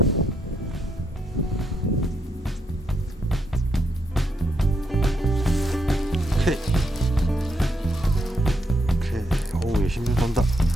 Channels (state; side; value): normal; both; correlation 0.78